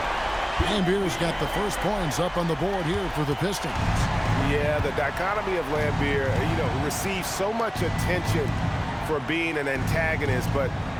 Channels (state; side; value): identical; both; correlation 1.00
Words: Lambert's got the first points up on the board here for the Pistons. Yeah, the dichotomy of Lambert, receives so much attention for being an antagonist, but